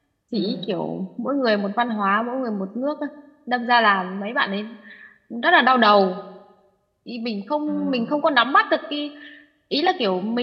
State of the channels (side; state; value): both; identical; correlation 1.00